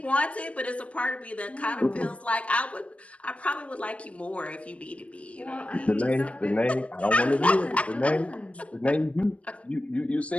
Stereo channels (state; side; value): late; right; 0.063 ms